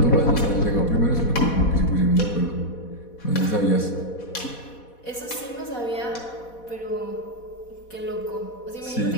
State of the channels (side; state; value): right; late; 4.1 ms